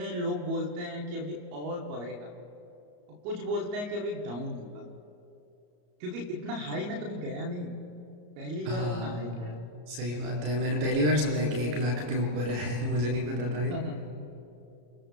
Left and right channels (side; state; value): left; late; 34 ms